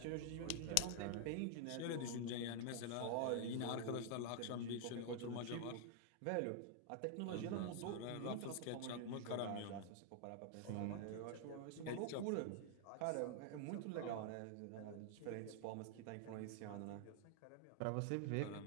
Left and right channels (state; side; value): different; both; correlation 0.00